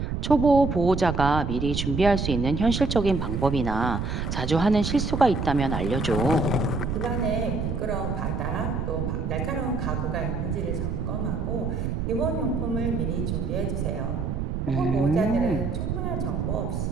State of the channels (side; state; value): right; noise; rumble, 2 dB below the sound